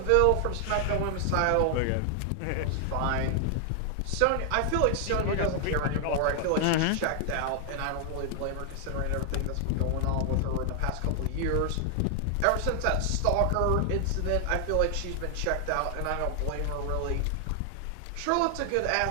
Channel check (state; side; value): different; both; correlation 0.00